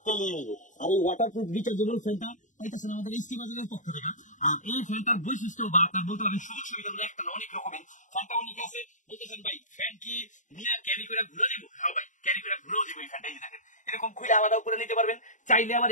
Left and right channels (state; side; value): late; right; 0.36 ms